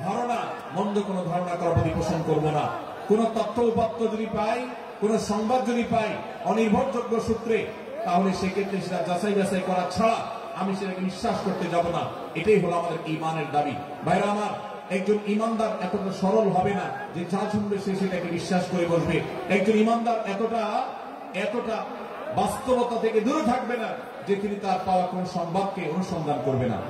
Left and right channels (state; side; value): identical; both; correlation 1.00